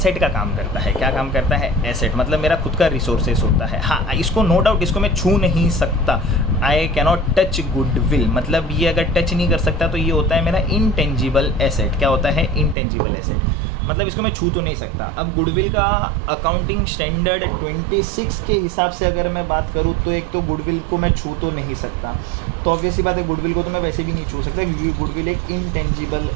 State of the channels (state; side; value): drops out; left; at 12.8 s